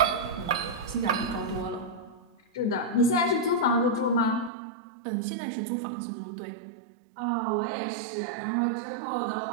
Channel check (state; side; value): drops out; left; at 4.5 s